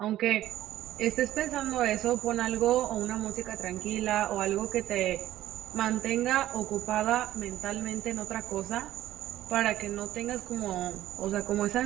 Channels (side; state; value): left; quieter; 13.8 dB